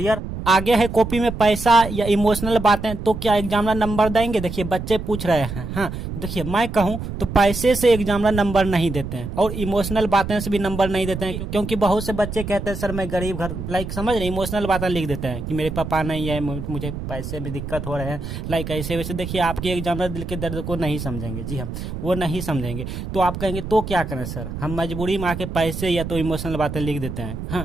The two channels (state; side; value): noise; right; rumble, 7 dB below the sound